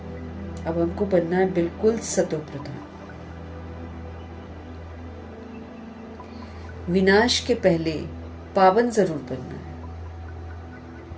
अब हमको बनना है बिल्कुल सतो प्रधान। विनाश के पहले पावन जरूर बनना है।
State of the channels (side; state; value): both; identical; correlation 1.00